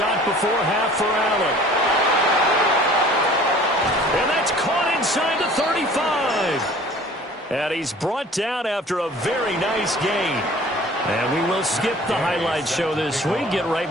before half for Allen. And that's caught inside the 35. And he's brought down after a very nice gain. And we will skip the highlight show this week. Get right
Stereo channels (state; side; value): normal; both; correlation 0.48